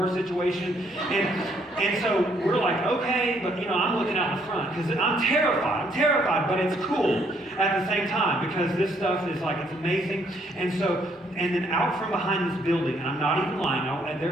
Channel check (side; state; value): both; normal; correlation 0.68